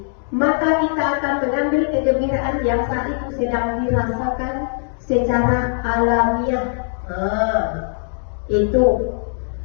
maka kita akan mengambil kegembiraan yang saat itu sedang dirasakan secara alamiah. Itu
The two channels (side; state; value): right; silent; digital silence